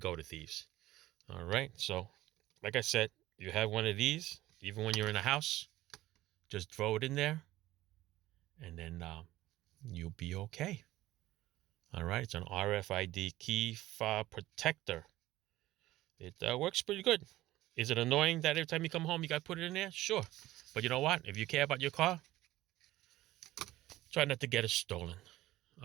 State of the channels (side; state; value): left; quieter; 16.2 dB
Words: the thieves. All right, so like I said, you have one of these, even when you're in a house, just throw it in there, and then you'll be okay. All right, it's an RFID key fob protector. It works pretty good. Is it annoying that every time you come home you got to put it in there? Sure. But you know what? If you care about your car, try not to get it stolen.